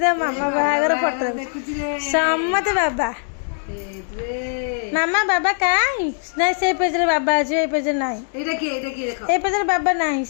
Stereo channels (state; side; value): silent; right; digital silence